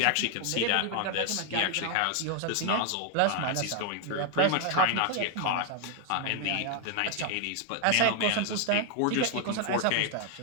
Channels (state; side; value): different; both; correlation 0.00